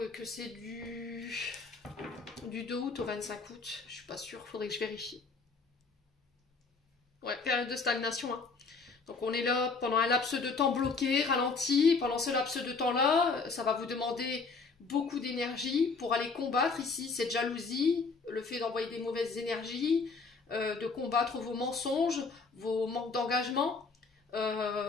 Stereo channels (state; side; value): quieter; right; 4.5 dB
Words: que c'est du 2 août au 25 août. Je suis pas sûre, il faudrait que je vérifie. Ouais, période de stagnation. Hein. Donc on est là pendant un laps de temps bloqué, ralenti. Pendant ce laps de temps-là, ça va vous demander beaucoup d'énergie pour aller combattre ici cette jalousie, le fait d'envoyer des mauvaises énergies, de combattre vos mensonges, vos manques d'engagement.